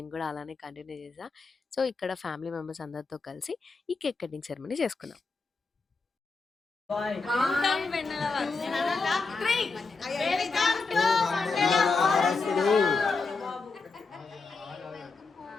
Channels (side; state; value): right; quieter; 4.2 dB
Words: కూడా అలానే కంటిన్యూ చేసా. సో ఇక్కడ ఫ్యామిలీ మెంబర్స్ అందరితో కలిసి ఈ కేక్ కటింగ్ సెరమనీ చేసుకున్నాం.